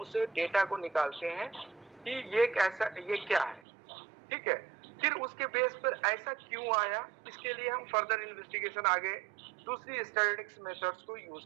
डेटा को निकालते हैं कि ये क्या है, ठीक है। फिर उसके बेस पर ऐसा क्यों आया, इसके लिए हम फर्दर इन्वेस्टिगेशन आगे दूसरी स्टैटिस्टिक्स मेथड्स को यूज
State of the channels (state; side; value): drops out; left; at 3.6 s